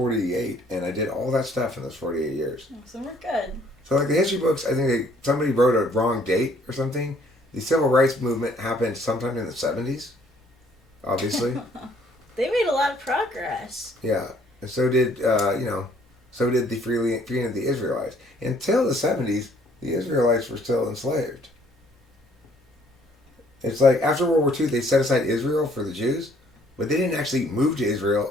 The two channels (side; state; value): both; normal; correlation 0.62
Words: and I did all that stuff in those 48 years. So we're good. So, like the history books, I think somebody wrote a wrong date or something. The civil rights movement happened sometime in the 70s, obviously. They made a lot of progress. Yeah, and so did the freeing of the Israelites. Until the 70s, the Israelites were still enslaved. It's like after World War II, they set aside Israel for the Jews, but they didn't actually move to